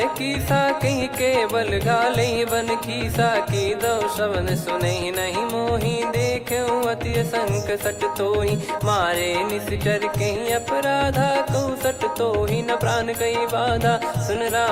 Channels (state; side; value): identical; both; correlation 1.00